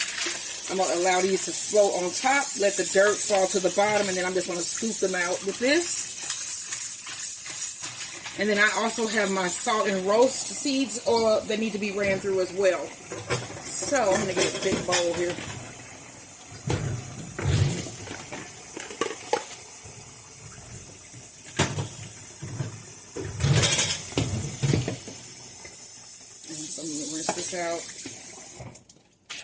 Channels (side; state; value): both; identical; correlation 1.00